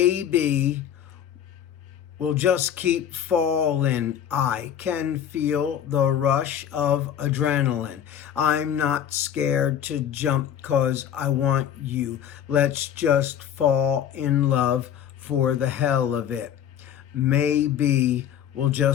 we'll just keep falling. I can feel the rush of adrenaline. I'm not scared to jump 'cause I want you. Let's just fall in love for the hell of it. Maybe we'll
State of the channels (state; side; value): quieter; right; 9.5 dB